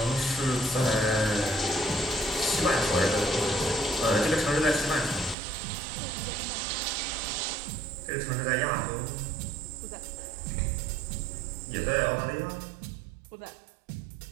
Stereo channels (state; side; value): drops out; left; at 5.4 s